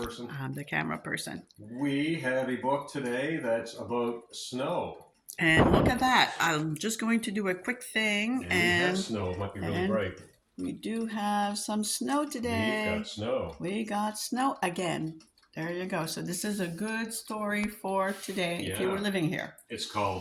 I'm the camera person. We have a book today that's about snow. And look at that. I'm just going to do a quick thing. And we have snow. It might be really bright. We do have some snow today. We've got snow. We got snow again. There you go. So this is a good story for today if you were living here. It's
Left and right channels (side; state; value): both; identical; correlation 1.00